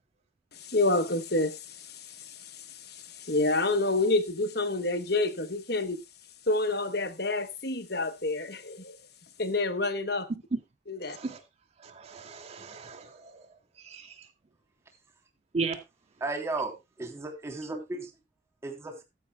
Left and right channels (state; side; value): normal; both; correlation -0.01